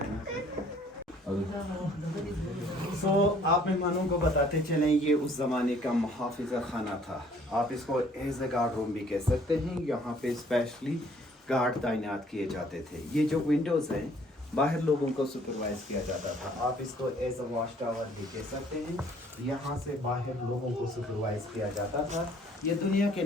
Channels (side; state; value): both; normal; correlation 0.59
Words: सो आप मेहमानों को बताते चलें, ये उस ज़माने का मुहाफ़िज़ा खाना था। आप इसको एज ए गार्ड रूम भी कह सकते हैं। यहाँ पे स्पेशली गार्ड तैनात किए जाते थे। ये जो विंडोज़ हैं, बाहर लोगों को सुपरवाइज़ किया जाता था। आप इसको एज ए वॉच टावर भी कह सकते हैं। यहाँ से बाहर लोगों को सुपरवाइज़ किया जाता था। ये दुनिया के